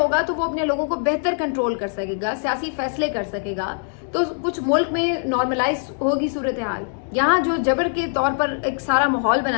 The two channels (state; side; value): silent; right; 64 dB below the other